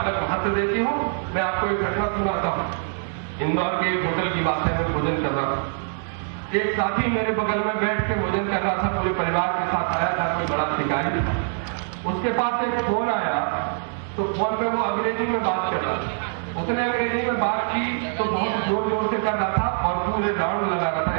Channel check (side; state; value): left; silent; 63 dB below the other